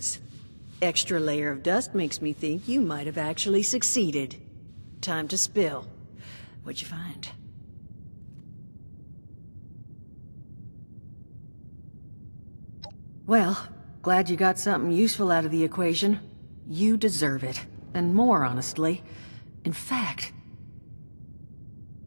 Extra layer of dust makes me think you might have actually succeeded. Time to spill. What'd you find? Well, glad you got something useful out of the equation. You deserve it. And more, honestly. In fact,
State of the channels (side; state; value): both; inverted; correlation -1.00